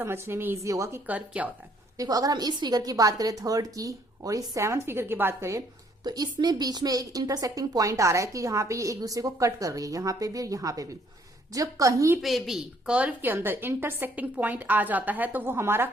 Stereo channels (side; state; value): both; normal; correlation 0.65